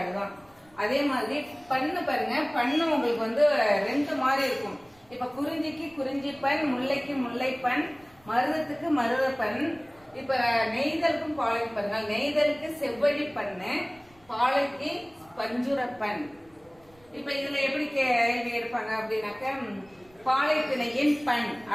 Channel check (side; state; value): right; noise; rumble, 30 dB below the sound